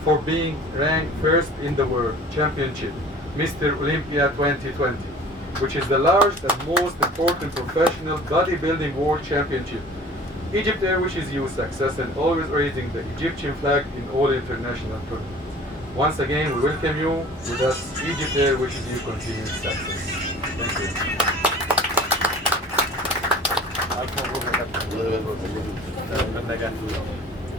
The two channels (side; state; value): both; normal; correlation 0.45